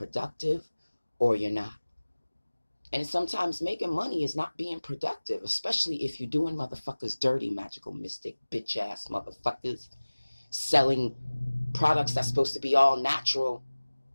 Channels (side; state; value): both; inverted; correlation -1.00